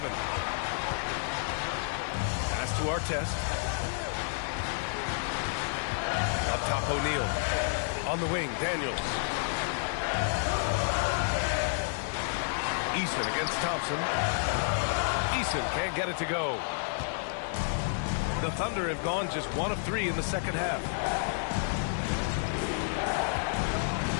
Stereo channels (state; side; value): silent; right; digital silence